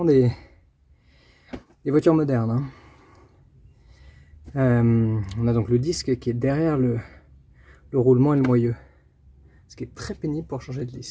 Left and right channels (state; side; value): identical; both; correlation 1.00